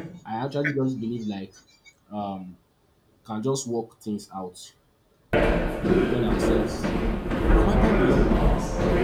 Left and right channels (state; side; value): identical; both; correlation 1.00